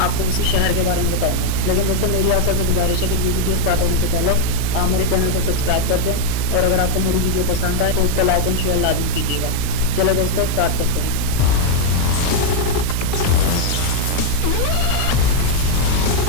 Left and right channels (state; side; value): different; both; correlation 0.00